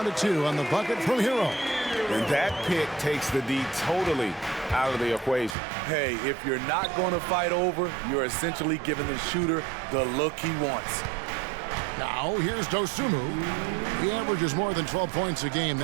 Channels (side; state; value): left; drops out; at 5.6 s